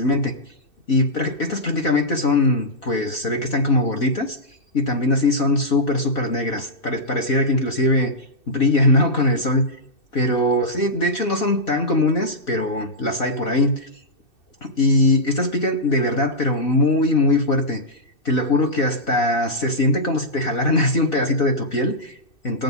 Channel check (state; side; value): late; right; 2.6 ms